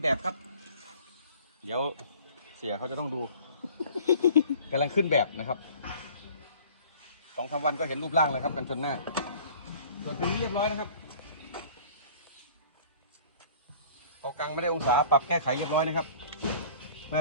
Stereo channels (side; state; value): both; inverted; correlation -0.49